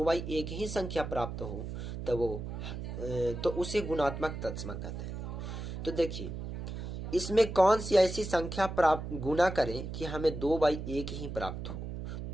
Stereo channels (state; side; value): noise; right; hum, 6 dB below the sound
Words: ही संख्या प्राप्त हो तो उसे गुणात्मक तत्समक कहते हैं। तो देखिए इसमें कौन सी ऐसी संख्या प्राप्त गुना करें कि हमें 2/1 ही प्राप्त हो,